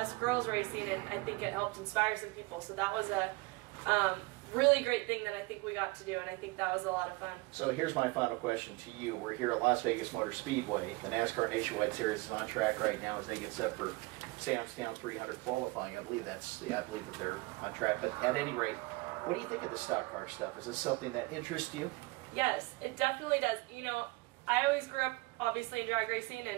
girls racing, and I think it helped inspire some people. So that was a really great thing that I think we got to do, and I think that was a lot of fun. So here's my final question to you. We're here at Las Vegas Motor Speedway. The NASCAR Nationwide Series is on track right now as they get set for Sam's Town 300 qualifying. I believe that they're on track. But at any rate, what do you think of the stock car stuff? Is this something that interests you? Yes, it definitely does. I always grew up obviously in drag racing,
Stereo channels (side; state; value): left; quieter; 23.9 dB